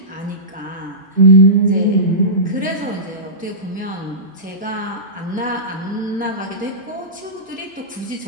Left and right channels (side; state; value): both; normal; correlation -0.20